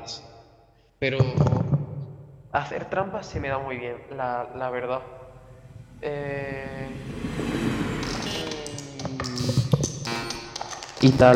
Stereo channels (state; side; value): identical; both; correlation 1.00